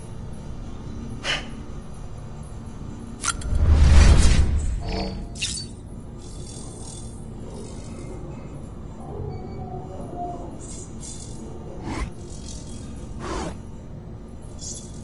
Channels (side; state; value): both; identical; correlation 1.00